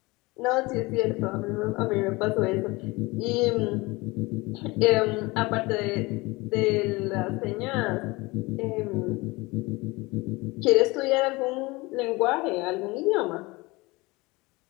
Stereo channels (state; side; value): quieter; right; 23.1 dB